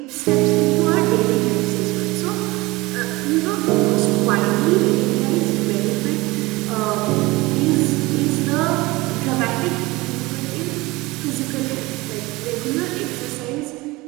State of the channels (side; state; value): left; quieter; 21.6 dB